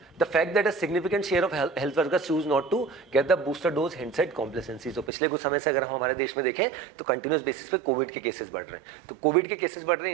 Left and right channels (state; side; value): drops out; left; at 5.1 s